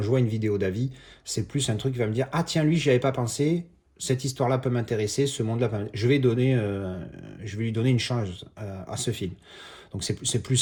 je vois une vidéo d'avis, c'est plus un truc qui va me dire: ah tiens, lui, j'y avais pas pensé. Cette histoire-là peut m'intéresser, ce monde-là peut m'intéresser. Je vais lui donner une chance à ce film. Donc c'est plus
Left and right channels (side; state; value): both; identical; correlation 1.00